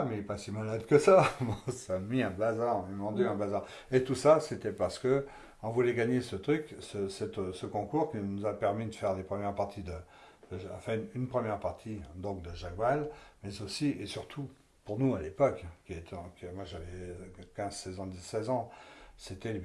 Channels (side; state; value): both; identical; correlation 1.00